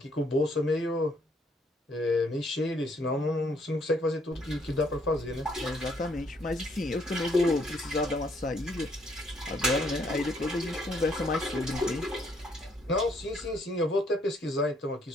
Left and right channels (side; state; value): both; normal; correlation 0.69